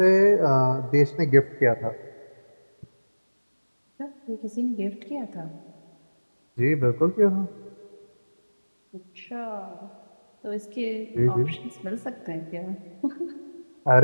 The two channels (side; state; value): both; inverted; correlation -1.00